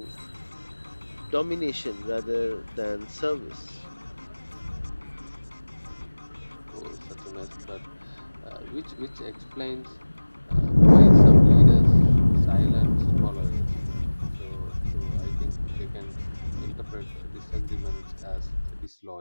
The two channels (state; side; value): inverted; both; correlation -1.00